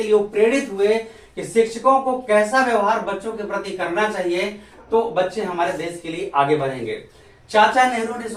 लिए वो प्रेरित हुए कि शिक्षकों को कैसा व्यवहार बच्चों के प्रति करना चाहिए, तो बच्चे हमारे देश के लिए आगे बढ़ेंगे। चाचा नेहरू ने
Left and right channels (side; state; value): both; identical; correlation 1.00